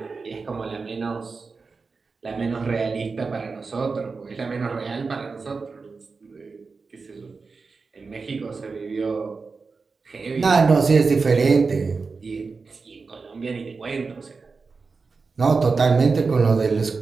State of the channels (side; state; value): left; quieter; 4.5 dB